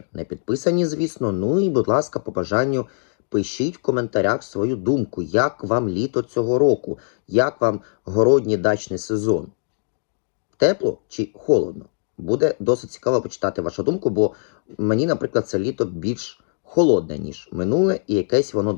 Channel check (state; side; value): silent; right; 59 dB below the other